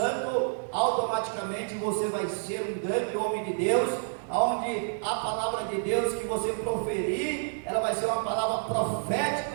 automaticamente você vai ser um grande homem de Deus, onde a palavra de Deus que você proferir, ela vai ser uma palavra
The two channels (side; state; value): left; silent; digital silence